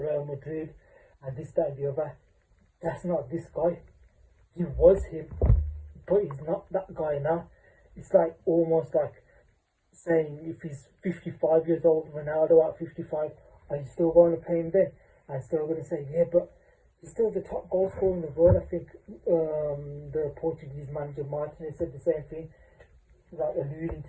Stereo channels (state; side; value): identical; both; correlation 1.00